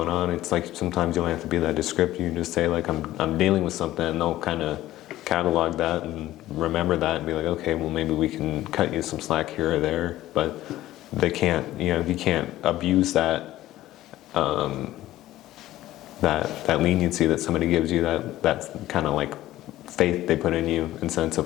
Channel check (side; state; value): right; quieter; 15.0 dB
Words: on, it's like sometimes you don't have to be that descriptive. You can just say like I'm dealing with something, and they'll kind of catalog that and remember that and be like, okay, well maybe we can cut you some slack here or there. But they can't, you know, you can't abuse that that leniency that somebody gives you, that's kind of like faith they put in you in sense